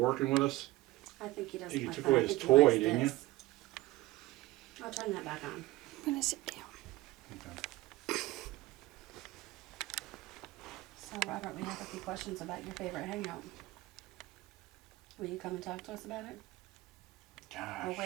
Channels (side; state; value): left; quieter; 18.3 dB